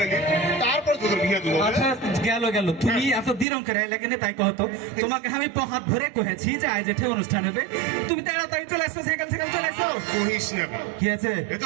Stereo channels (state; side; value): drops out; left; at 3.5 s